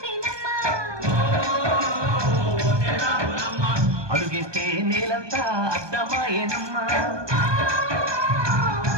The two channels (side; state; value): left; late; 1.2 ms